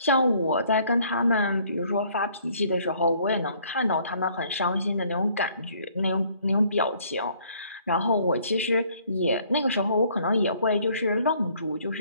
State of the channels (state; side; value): inverted; both; correlation -0.62